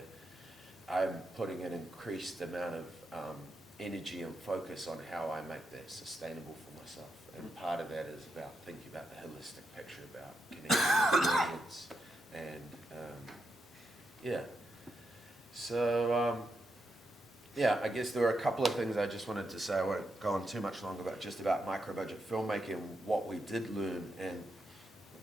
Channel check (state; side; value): normal; both; correlation 0.83